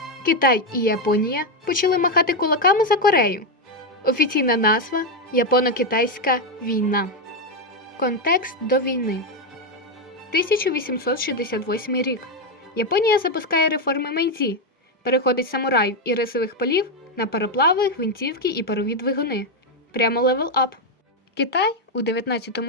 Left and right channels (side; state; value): both; normal; correlation 0.05